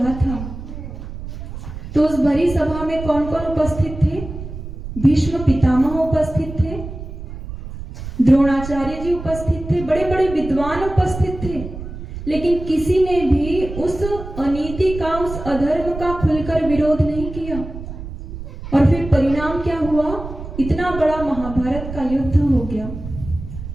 था, तो उस भरी सभा में कौन कौन उपस्थित थे? भीष्म पितामह उपस्थित थे, द्रोणाचार्य जी उपस्थित थे, बड़े बड़े विद्वान उपस्थित थे, लेकिन किसी ने भी उस अनीति का, उस अधर्म का खुलकर विरोध नहीं किया। और फिर परिणाम क्या हुआ? इतना बड़ा महाभारत का युद्ध हो गया।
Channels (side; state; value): right; noise; rumble, 10 dB below the sound